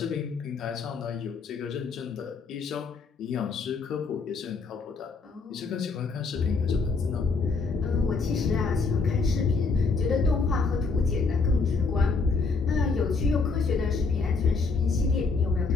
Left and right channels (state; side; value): quieter; right; 4.5 dB